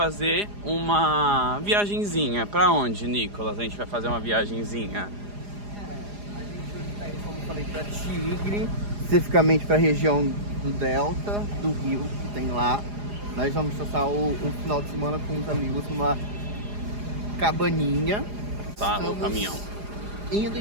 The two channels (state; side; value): late; left; 4.9 ms